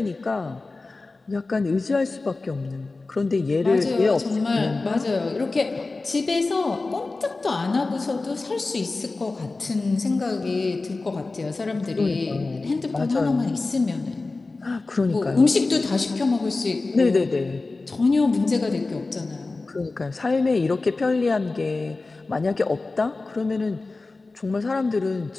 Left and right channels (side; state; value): right; quieter; 3.5 dB